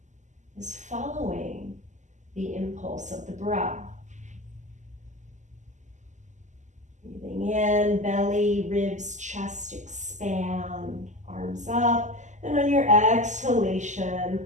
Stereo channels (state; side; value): late; left; 0.34 ms